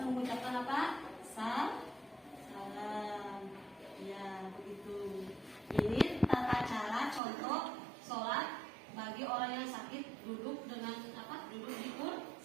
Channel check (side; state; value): left; drops out; at 7.2 s